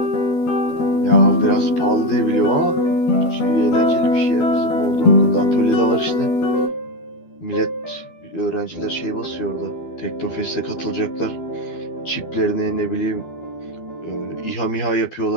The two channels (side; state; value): right; late; 12 ms